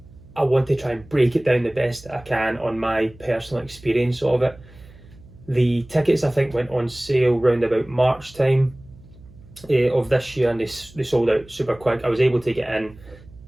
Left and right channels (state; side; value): noise; right; hum, 22 dB below the sound